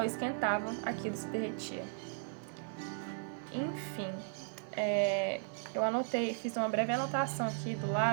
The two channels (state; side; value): silent; left; 54 dB below the other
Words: esquentava, aquilo se derretia. Enfim, eu fiz uma breve anotação aqui do